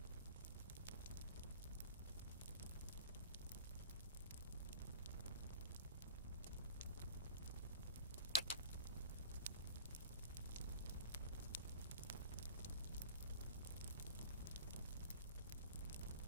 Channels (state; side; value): inverted; both; correlation -0.39